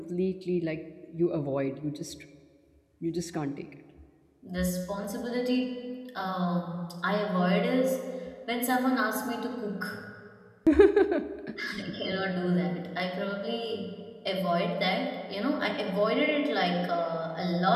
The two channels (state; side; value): identical; both; correlation 1.00